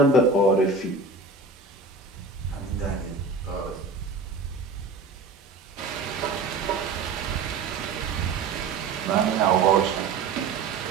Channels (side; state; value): left; quieter; 4.1 dB